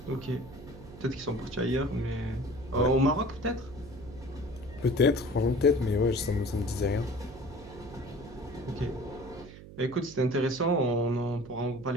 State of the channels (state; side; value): noise; right; hum, 16 dB below the sound